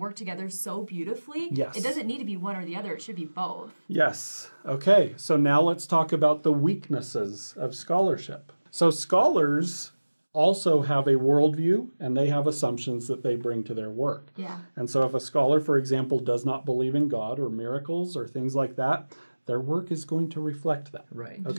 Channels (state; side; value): inverted; both; correlation -1.00